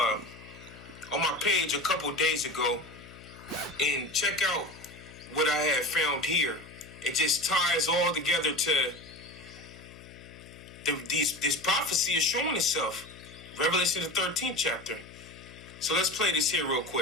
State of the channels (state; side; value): noise; left; hum, 18 dB below the sound